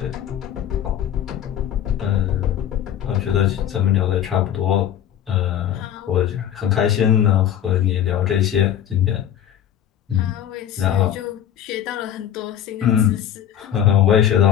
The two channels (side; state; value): right; quieter; 10.1 dB